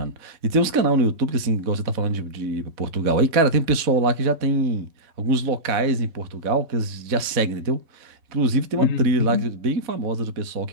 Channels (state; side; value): late; left; 4.0 ms